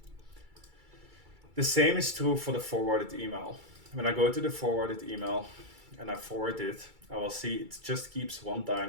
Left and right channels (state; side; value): late; left; 2.3 ms